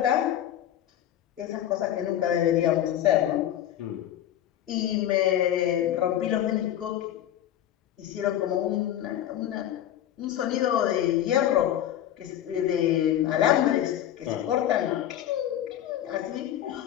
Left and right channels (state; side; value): quieter; right; 11.6 dB